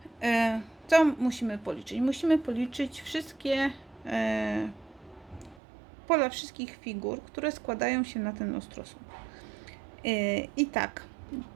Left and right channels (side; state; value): left; drops out; at 5.6 s